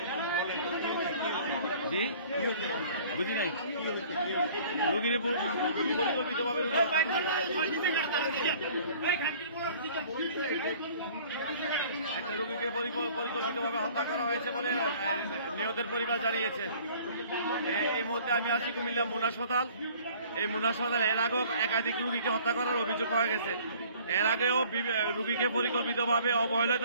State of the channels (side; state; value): both; inverted; correlation -0.52